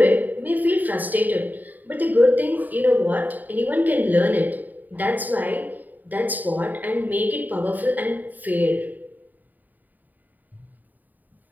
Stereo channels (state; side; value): late; left; 0.085 ms